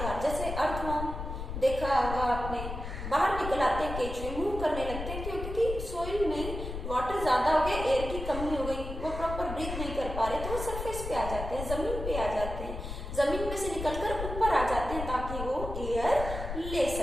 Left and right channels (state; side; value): noise; left; rumble, 6 dB below the sound